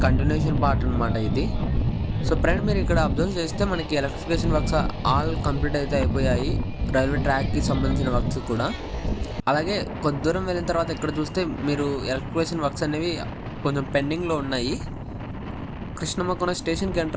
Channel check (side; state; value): both; identical; correlation 1.00